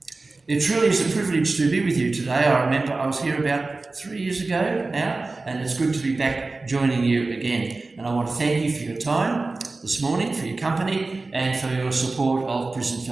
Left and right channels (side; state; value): left; quieter; 3.5 dB